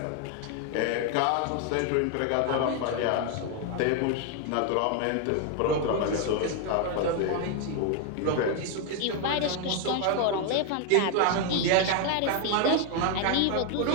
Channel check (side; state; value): both; different; correlation 0.01